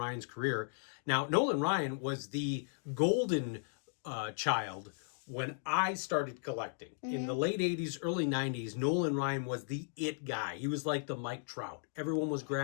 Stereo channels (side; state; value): right; silent; digital silence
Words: career. Now, Nolan Ryan was the golden child when I started collecting. In the late 80s, early 90s, Nolan Ryan was the it guy. He was like the Mike Trout. Everyone was